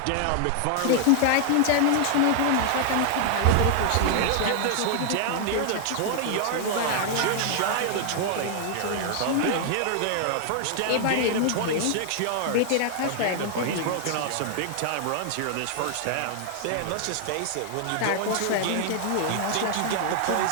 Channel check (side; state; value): both; different; correlation 0.00